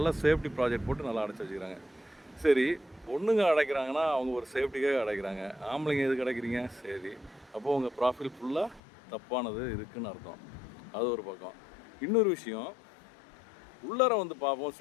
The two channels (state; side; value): drops out; right; at 8.8 s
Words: சேஃப்டி ப்ராஜெக்ட் போட்டு நல்லா அடைச்சி வச்சுக்கிறாங்க. சரி, பொண்ணுங்க அடைக்கிறாங்கன்னா அவங்க ஒரு சேஃப்டிக்காக அடைக்கிறாங்க. ஆம்பளைங்க எதுக்கு அடைக்கிறீங்க? சரி, அப்போது உங்கள் ப்ராஃபில் ஃபுல்லாக தப்பானது இருக்குதுன்னு அர்த்தம். அது ஒரு பக்கம். இன்னொரு விஷயம், உள்ளார வந்து பார்ப்போம்